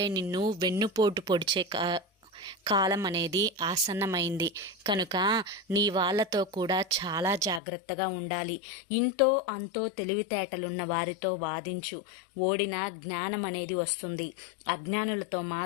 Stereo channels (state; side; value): drops out; right; at 7.6 s